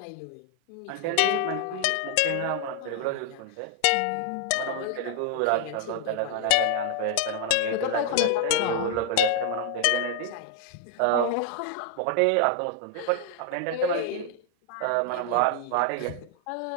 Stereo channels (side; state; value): both; different; correlation 0.00